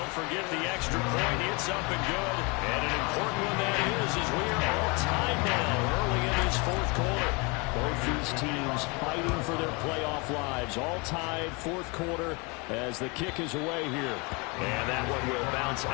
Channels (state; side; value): quieter; right; 29.2 dB